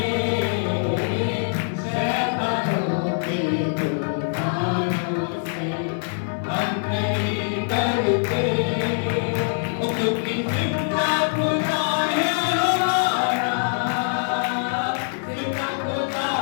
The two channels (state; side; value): silent; right; 60 dB below the other